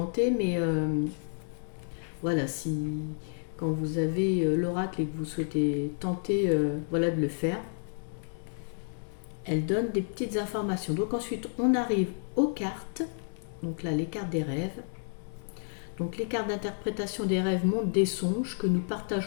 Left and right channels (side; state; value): right; silent; digital silence